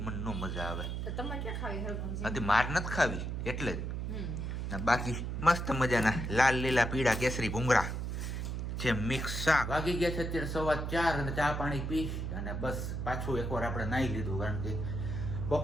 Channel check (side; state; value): right; noise; hum, 3 dB below the sound